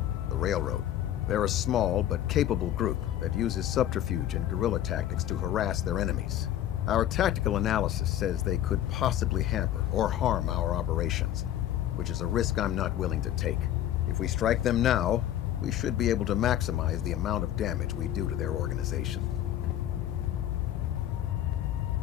the Railroad. They're a small but capable group that uses subterfuge and guerrilla tactics to harass their enemies. Our tactical analysis says they could possibly hamper or harm our operations, which is a risk I'm not willing to take. If we strike them now, we should be able to maximize the amount of damage we do to their organization.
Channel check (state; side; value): quieter; right; 11.9 dB